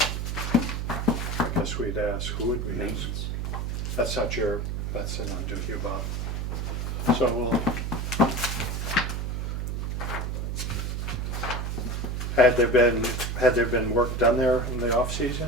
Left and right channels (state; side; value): noise; right; hum, 2 dB below the sound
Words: I guess we'd ask, who would we ask? Maintenance. That's not to you, Bob. So we'll. Had there been work done there in the